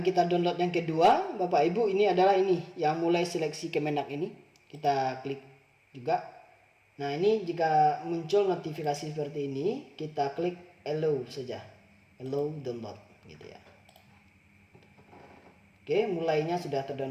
kita download yang kedua Bapak Ibu ini adalah ini, yang mulai seleksi Kemenak ini. Kita klik juga. Nah, ini jika muncul notifikasi seperti ini, kita klik allow saja, allow download gitu ya. Oke, mulainya sudah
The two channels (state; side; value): identical; both; correlation 1.00